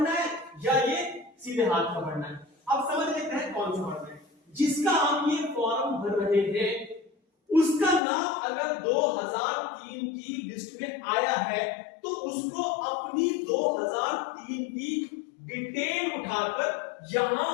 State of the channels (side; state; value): right; drops out; at 8.0 s